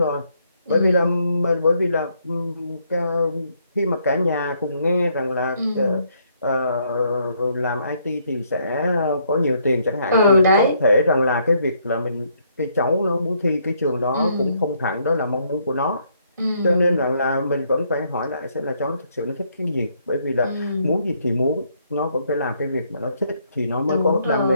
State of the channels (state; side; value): inverted; both; correlation -0.71